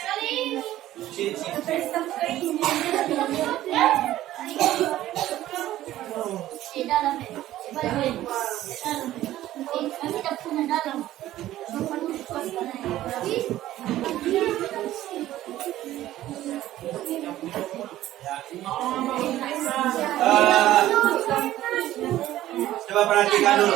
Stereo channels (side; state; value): left; quieter; 14.2 dB